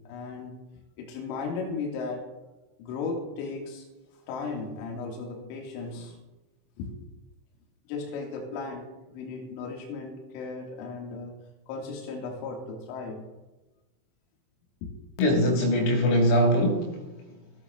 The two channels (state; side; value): late; right; 23 ms